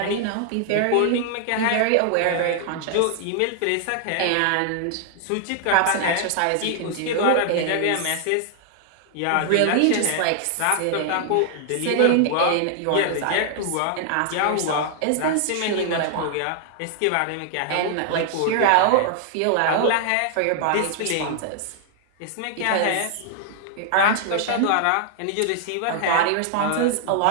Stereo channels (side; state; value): both; different; correlation 0.00